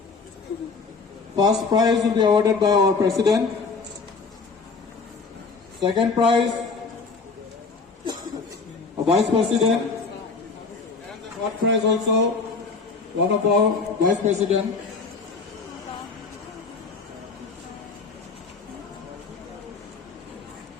First prize will be awarded by our President. Second prize, a Vice President. And the third prize also, one of our Vice President.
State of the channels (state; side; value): quieter; right; 4.5 dB